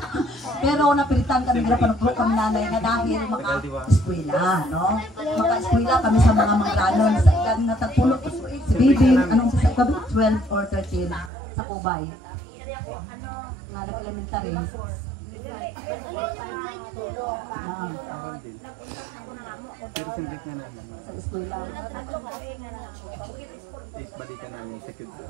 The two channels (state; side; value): drops out; left; at 11.3 s